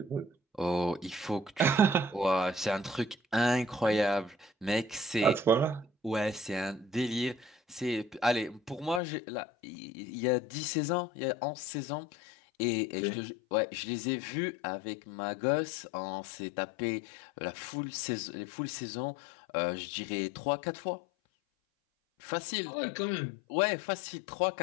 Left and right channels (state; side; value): drops out; right; at 9.0 s